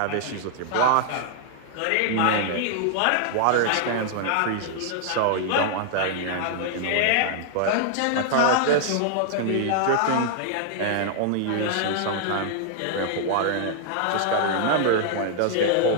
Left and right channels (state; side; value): different; both; correlation -0.01